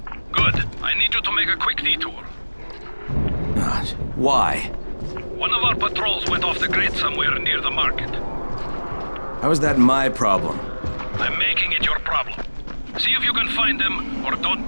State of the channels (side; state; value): both; inverted; correlation -1.00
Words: Good. I need you to make a quick detour. Gosh, why? One of our patrols went off the grid somewhere near the market. How is that my problem? I'm making it your problem. See if you can find them, or don't